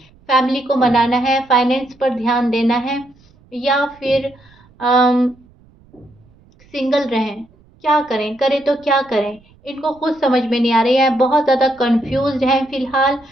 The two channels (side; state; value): right; noise; rumble, 30 dB below the sound